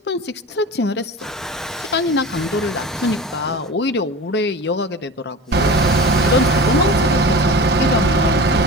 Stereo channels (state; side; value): normal; both; correlation 0.33